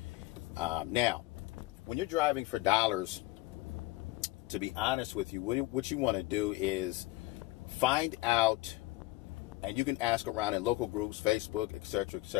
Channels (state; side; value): quieter; right; 19.5 dB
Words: Now, when you're driving for dollars, to be honest with you, what you want to do is find out, and you can ask around in local groups, Facebook, etc.,